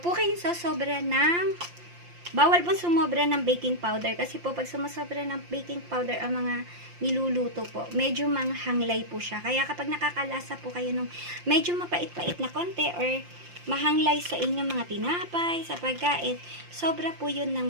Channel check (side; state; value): left; late; 5.7 ms